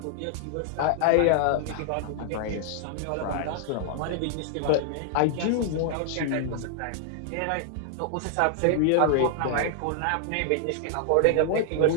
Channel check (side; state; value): both; different; correlation -0.01